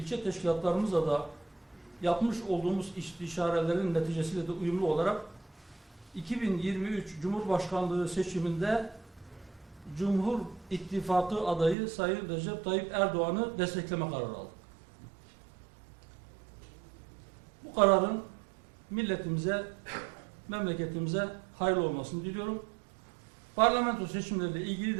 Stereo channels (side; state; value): left; drops out; at 11.8 s